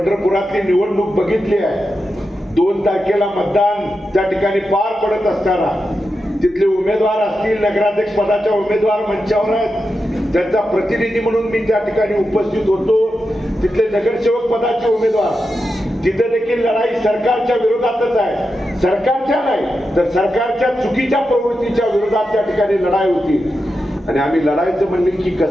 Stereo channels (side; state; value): both; normal; correlation 0.89